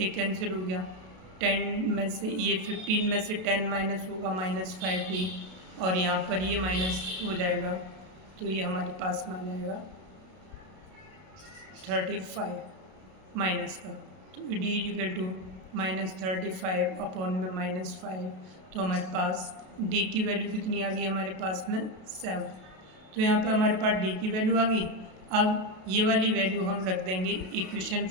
कैंसिल हो गया, 10 में से ये 15 में से 10 माइनस होगा -5d, और यहाँ पर ये माइनस हो जाएगा तो ये हमारे पास में आ जाएगा 35 माइनस का। तो डी इक्वल टू -35 अपॉन में -5, तो हमारे पास डी की वैल्यू कितनी आ गई हमारे पास में 7। तो यहाँ पे हमारे पास डी की वैल्यू आ गई। अब ये वाली वैल्यू हम रख देंगे इक्वेशन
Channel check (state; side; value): late; left; 32 ms